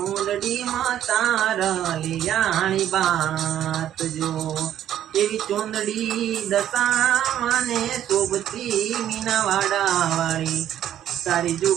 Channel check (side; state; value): left; quieter; 11.2 dB